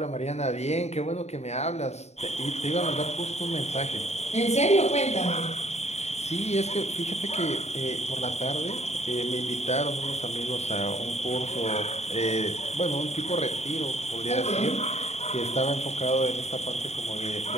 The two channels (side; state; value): right; late; 0.32 ms